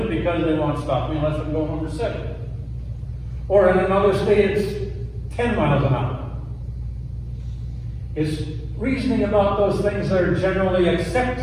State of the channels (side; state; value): both; identical; correlation 1.00